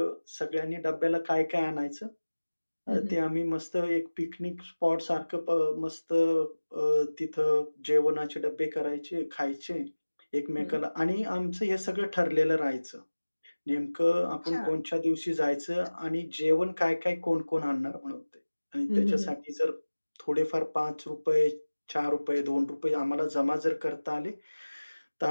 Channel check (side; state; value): both; inverted; correlation -1.00